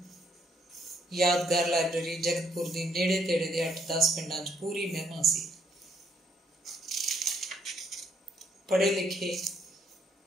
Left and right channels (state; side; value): normal; both; correlation 0.70